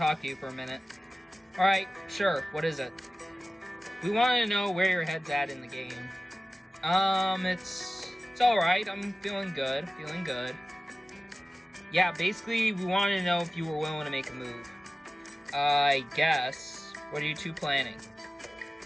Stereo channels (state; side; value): normal; both; correlation 0.96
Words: to you for a minute. Alright, sure, what is it? We wanted to know where your head's at in the game. It's alright, I'm feeling good. Yeah, basically, we wanted to know if you were willing to make a move. I guess. What are you two planning?